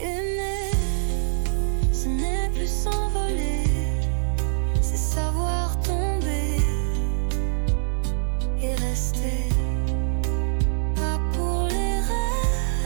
ce n'est plus s'envoler, c'est savoir tomber et rester. Pas pour les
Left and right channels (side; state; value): left; silent; digital silence